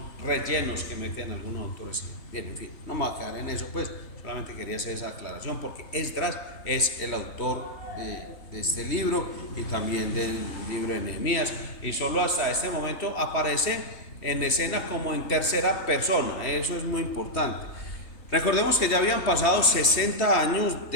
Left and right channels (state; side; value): late; right; 3.3 ms